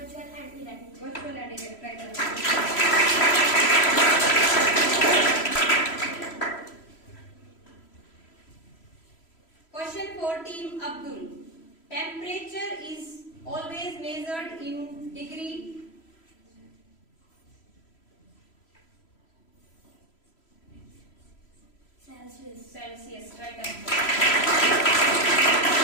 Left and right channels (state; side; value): late; right; 3.0 ms